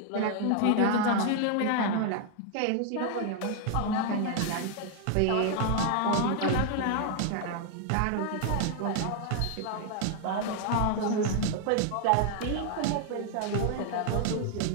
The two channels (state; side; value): different; both; correlation 0.00